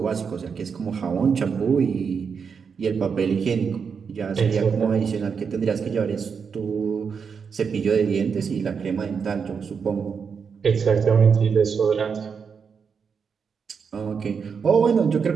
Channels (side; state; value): left; quieter; 6.2 dB